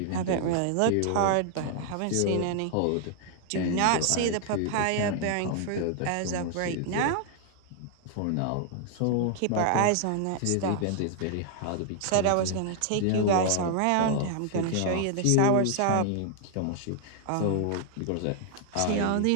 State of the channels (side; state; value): both; different; correlation 0.00